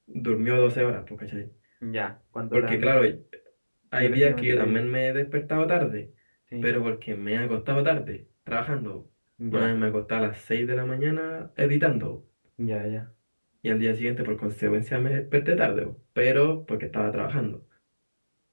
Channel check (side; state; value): both; inverted; correlation -1.00